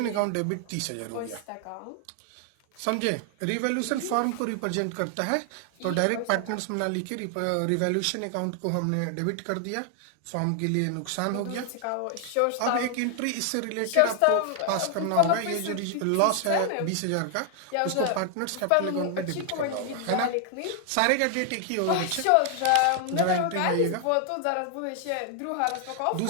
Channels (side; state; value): both; different; correlation 0.00